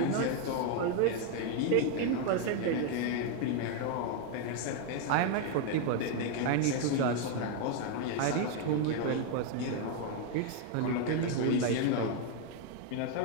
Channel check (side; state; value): both; different; correlation 0.01